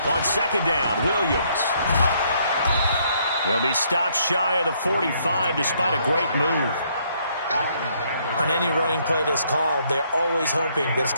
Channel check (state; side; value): inverted; both; correlation -0.69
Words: On 2nd down, Williams. He'll be stopped shy of the 45 despite a great move. On any running play that's called, they're always hoping that it's